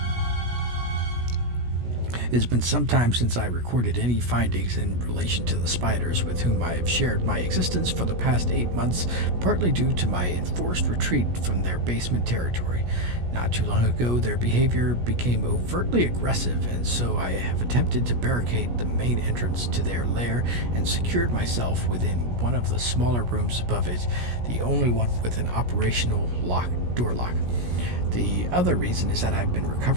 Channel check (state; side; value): late; left; 17 ms